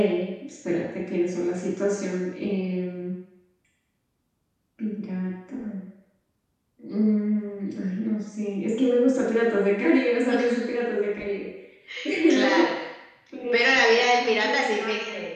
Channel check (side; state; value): both; identical; correlation 1.00